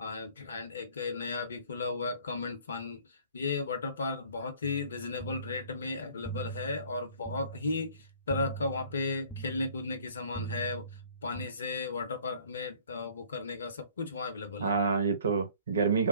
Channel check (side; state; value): both; inverted; correlation -0.54